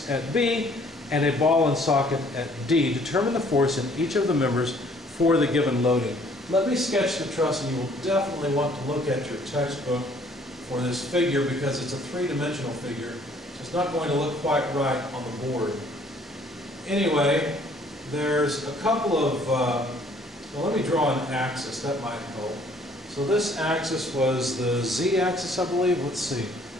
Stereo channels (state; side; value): normal; both; correlation 0.59